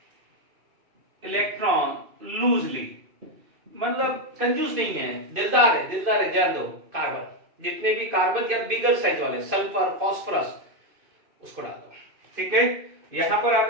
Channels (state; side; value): late; left; 2.5 ms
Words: इलेक्ट्रॉन लूजली, मतलब कंजूस नहीं है, दिलदार है, दिलदार है। जान दो कार्बन, जितने भी कार्बन या बिगर साइज वाले, सल्फर, फास्फोरस, उसको डाल दो, ठीक है। यहां पर आप